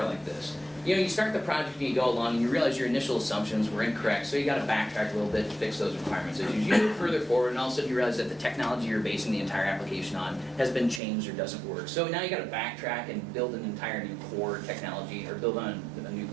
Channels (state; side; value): drops out; left; at 11.0 s